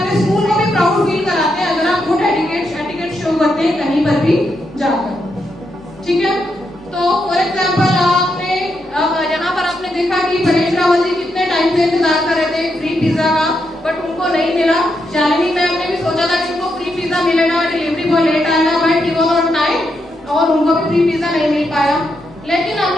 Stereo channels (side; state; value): both; normal; correlation 0.82